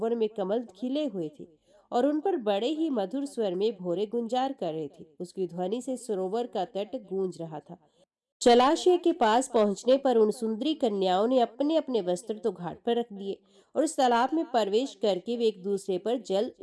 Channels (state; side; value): identical; both; correlation 1.00